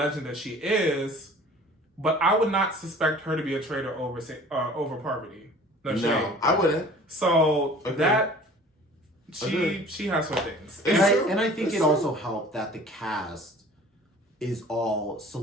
that she is, but I would not suspect her to be a traitor over Parvati. No, I wouldn't. So that she has her things, and I think it also helped that the cast is all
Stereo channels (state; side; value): normal; both; correlation 0.47